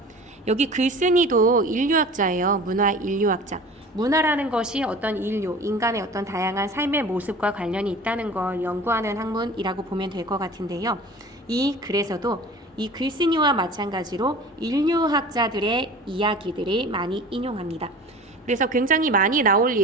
여기 글쓴이도 인류학자예요. 문화 인류학자. 문화라는 것이 어떤 인류, 인간의 어떤 다양한 삶의 모습과 관련이 있다는 걸 연구하는 학문이라고 보면 될 것 같은데요. 이 글에서도 이 글쓴이와 마찬가지로 인류학자들의 이야기들을 많이 인용합니다. 그래서 굉장히 많이 나올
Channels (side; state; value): both; normal; correlation 0.40